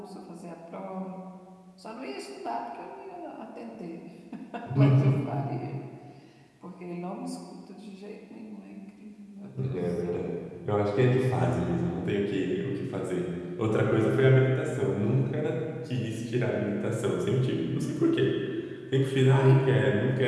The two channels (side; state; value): both; identical; correlation 1.00